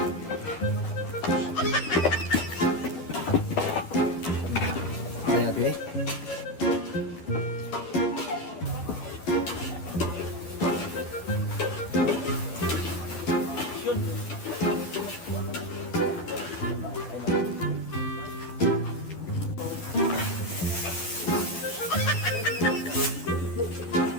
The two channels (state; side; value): late; right; 11 ms